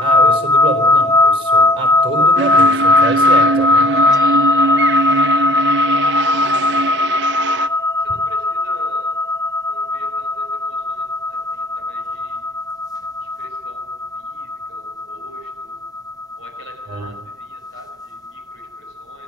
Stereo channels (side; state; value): both; normal; correlation 0.53